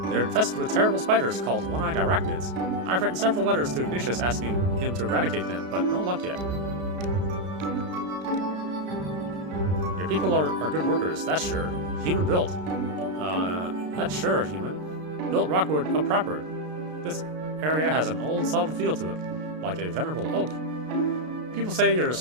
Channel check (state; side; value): late; left; 33 ms